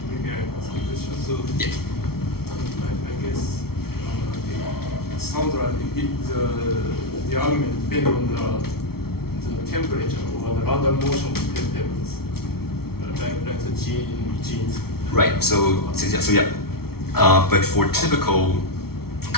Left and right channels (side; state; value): right; late; 0.94 ms